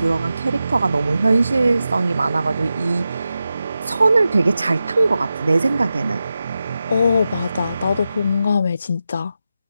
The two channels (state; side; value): inverted; both; correlation -0.91